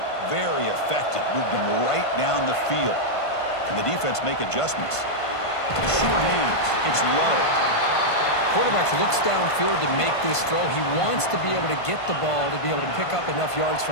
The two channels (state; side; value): late; right; 1.5 ms